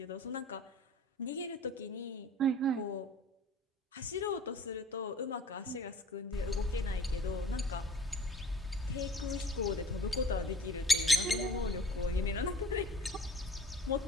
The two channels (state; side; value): normal; both; correlation 0.48